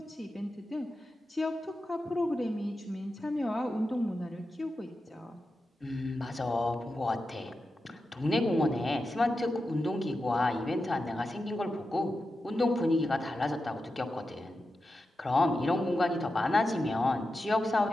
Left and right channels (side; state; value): both; normal; correlation 0.90